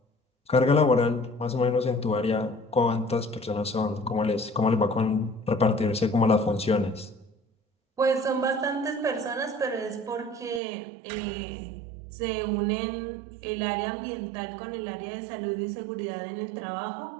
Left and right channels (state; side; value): drops out; left; at 10.6 s